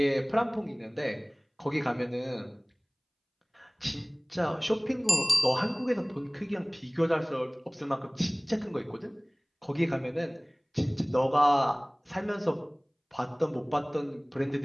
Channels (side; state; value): both; identical; correlation 1.00